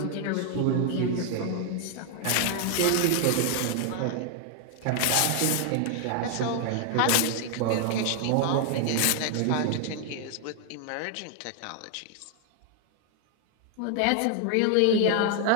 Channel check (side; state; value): both; different; correlation 0.00